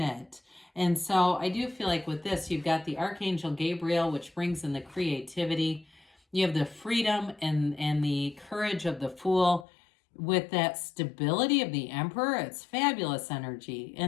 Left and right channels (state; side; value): drops out; right; at 9.7 s